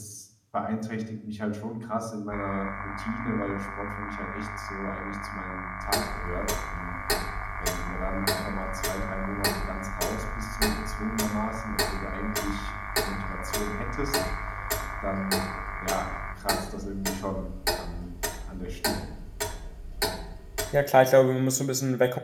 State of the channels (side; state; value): both; identical; correlation 1.00